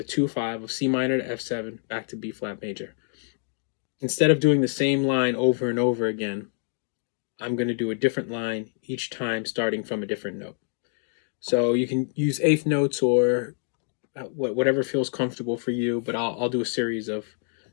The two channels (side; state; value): right; silent; 61 dB below the other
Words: 2/5 of C minor to F7 back to B flat major. Instead of doing the same line over and over again, I'm going to do a different line each time, starting from a different note. So you can use eighth notes or whatever feels comfortable for you, but I'll do a series of